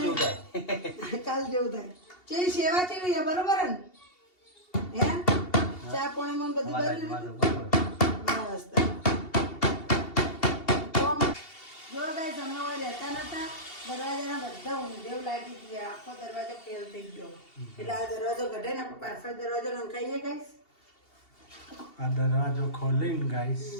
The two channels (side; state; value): right; late; 2.7 ms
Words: જેવું થાય. ચેવી સેવા કેવી છે? બરોબર ને? હે ચા પાણી માં બધું કરી લીધું? બસ જો ગાઈસ અમે હવે રહેતા નતા. દરવાજાના બધા ઊંધેવ લાગી ગયા, આખો દરવાજો ફેલ થઈ ગયો. એટલે આ દરવાજો કઢે ને આપણે પાછળ દરવાજો નંખાઈએ ગાઈસ. આ દરવાજો ખોલીને ગાઈસ